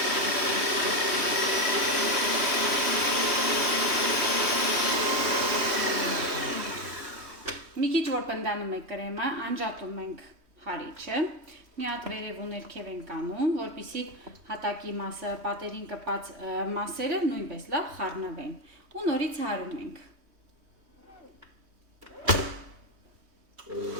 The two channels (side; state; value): left; late; 3.1 ms